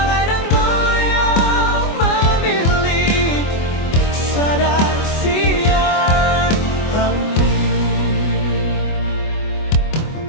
dang boyang mamili sada sian hami.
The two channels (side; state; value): right; late; 24 ms